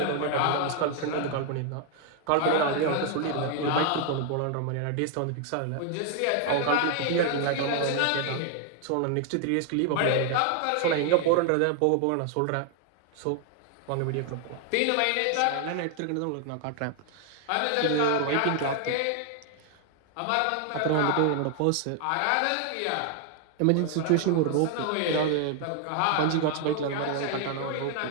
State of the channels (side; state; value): both; different; correlation 0.00